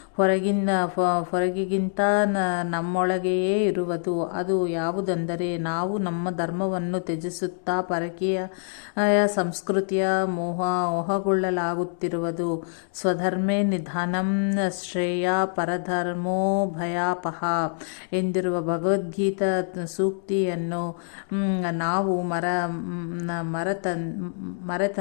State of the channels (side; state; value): right; silent; digital silence